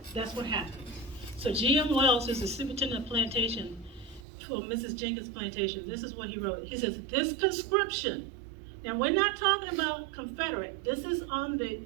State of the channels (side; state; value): left; drops out; at 4.2 s